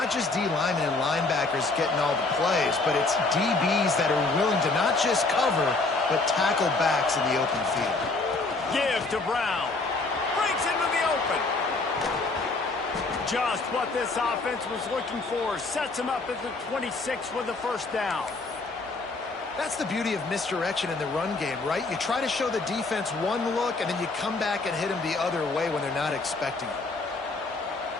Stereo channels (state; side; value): quieter; right; 3.5 dB